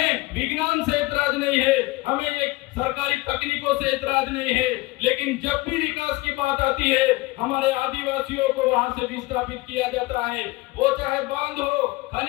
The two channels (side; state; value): right; quieter; 21.4 dB